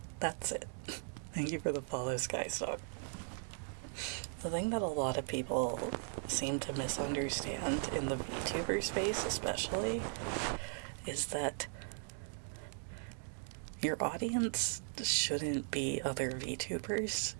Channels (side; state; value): left; silent; 52 dB below the other